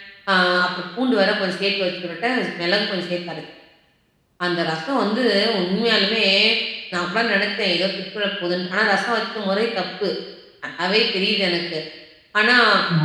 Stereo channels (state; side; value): identical; both; correlation 1.00